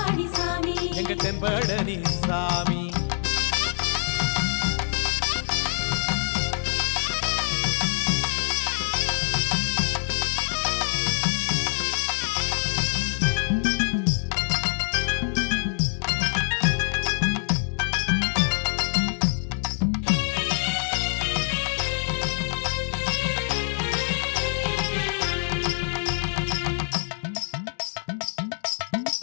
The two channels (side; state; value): right; silent; digital silence